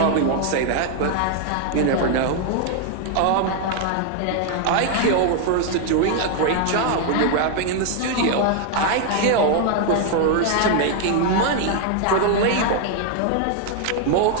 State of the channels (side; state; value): both; different; correlation 0.00